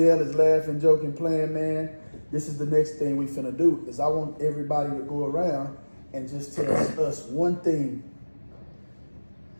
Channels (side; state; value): both; inverted; correlation -1.00